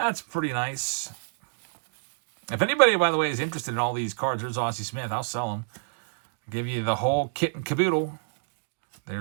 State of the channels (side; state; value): left; silent; digital silence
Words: pretty nice. If anybody, by the way, is interested in all these cards, there's Ozzie Smith. I'll sell them. I'll give you the whole kit and caboodle.